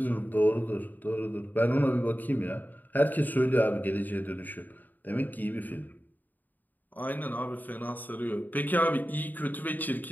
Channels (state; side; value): late; right; 0.086 ms